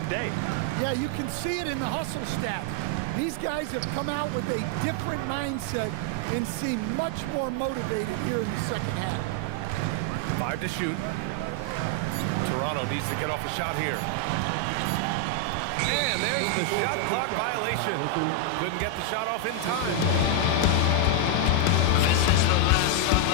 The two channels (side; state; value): both; different; correlation 0.00